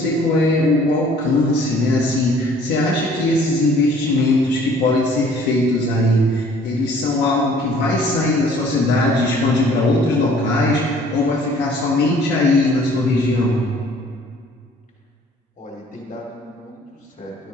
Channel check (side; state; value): both; normal; correlation 0.55